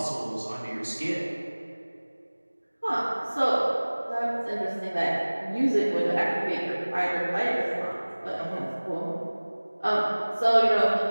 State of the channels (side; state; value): both; inverted; correlation -1.00